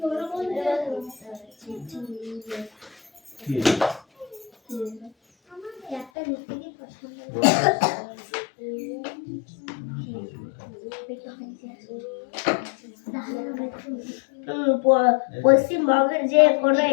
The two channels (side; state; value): right; drops out; at 6.1 s